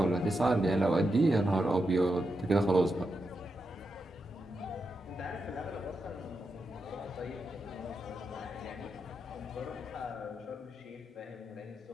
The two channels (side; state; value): both; normal; correlation 0.86